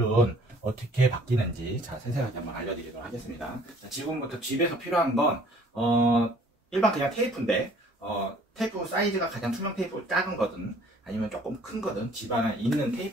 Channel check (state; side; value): normal; both; correlation 0.56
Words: 어떻게 바뀌는지 자, 세세하게 한번 알려드리도록 하겠습니다. 자, 지금부터 집에서 필요한 건 일반 그냥 테이프인데 테이프 사이즈가 가장 투명 테이프 작은 거든 아니면 조금 큰 거든 집 안에 있는